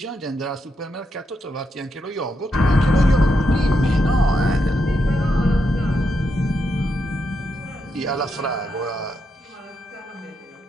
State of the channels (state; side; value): normal; both; correlation 0.83